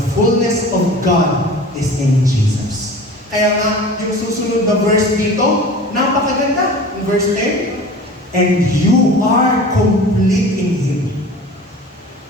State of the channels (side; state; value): both; normal; correlation 0.39